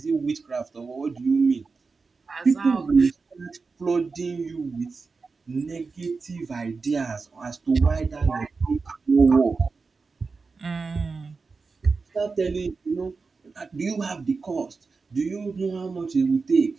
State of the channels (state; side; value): quieter; left; 4.4 dB